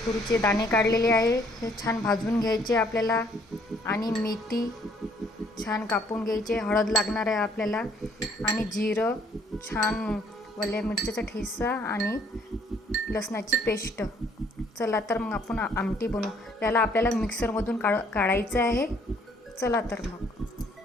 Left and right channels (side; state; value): both; normal; correlation 0.63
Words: तुरीचे दाणे काढलेले आहे, हे छान भाजून घ्यायचे आपल्याला आणि मेथी छान कापून घ्यायचे। हळद लागणार आहे आपल्याला आणि जिरं, छान वल्या मिरच्याचा ठेचा आणि लसणाची पेस्ट। चला तर मग आपण आमटी बनवू। त्याला आपल्याला मिक्सरमधून काढायचं आहे। चला तर मग।